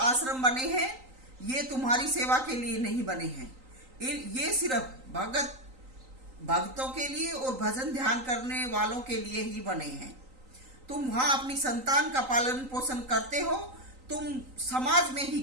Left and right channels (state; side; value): late; left; 3.9 ms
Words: बने हैं ये तुम्हारी सेवा के लिए नहीं बने हैं, ये सिर्फ भक्तों के लिए और भजन ध्यान करने वालों के लिए ही बने हैं। तुम वहां अपनी संतान का पालन पोषण करते हो, तुम समाज में ही